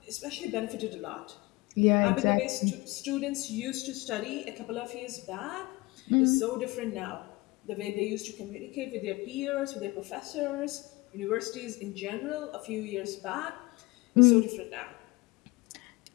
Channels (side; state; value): right; quieter; 22.6 dB